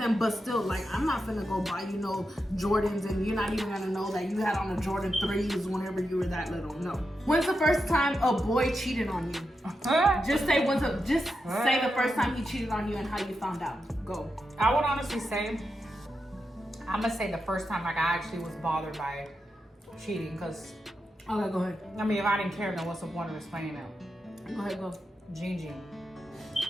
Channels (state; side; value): normal; both; correlation 0.87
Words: but still, like, I'm not finna go buy, you know, Jordans, and you're not even gonna know that you had on the Jordan 3s whenever you were that little. No. When's the first time a boy cheated on you? Just say say the first time he cheated on you and how you found out. Go. I would honestly say, I'm gonna say the first time like I actually was bothered by cheating, because Okay, go ahead. I mean, if I didn't care, then what's the point of explaining it? Go ahead, go. Gene.